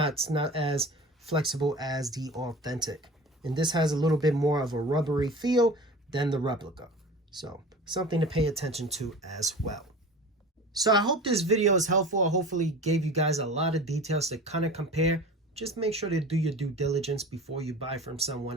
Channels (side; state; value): both; normal; correlation 0.37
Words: as flexible as the authentic. And this has a little bit more of a rubbery feel than the replica. So something to pay attention to as well. So I hope this video is helpful. I hopefully gave you guys a lot of details to kind of compare. Just make sure to do your due diligence before you buy from